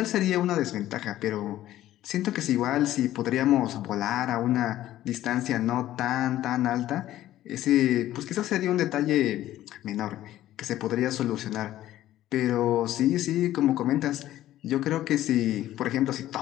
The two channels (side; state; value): right; quieter; 13.8 dB